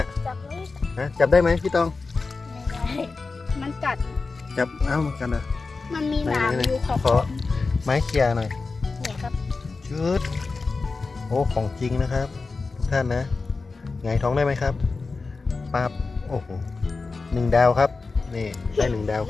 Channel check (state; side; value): quieter; right; 4.1 dB